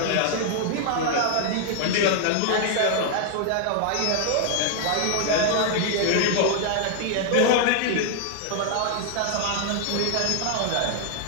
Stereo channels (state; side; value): different; both; correlation 0.00